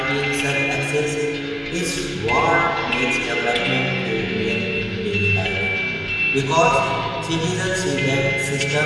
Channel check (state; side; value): identical; both; correlation 1.00